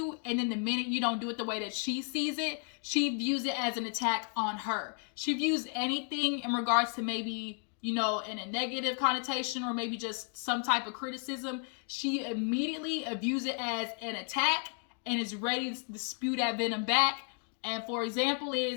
and then the minute you don't do it the way that she sees it, she views it as an attack on her. She views anything in regards to maybe, you know, in a negative connotation or maybe just some type of criticism, she immediately views it as an attack and is ready to spew that venom back. And for example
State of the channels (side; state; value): right; quieter; 40.0 dB